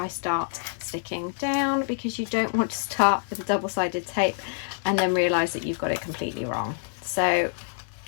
start sticking down, because you don't want to start with a double-sided tape and then realize that you've got it completely wrong. So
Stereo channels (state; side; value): silent; right; digital silence